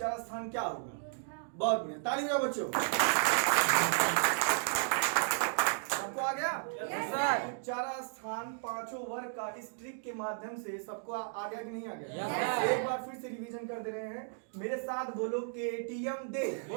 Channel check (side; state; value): left; silent; digital silence